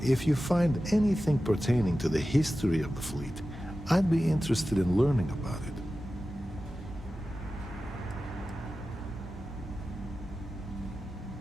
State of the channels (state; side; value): normal; both; correlation 0.94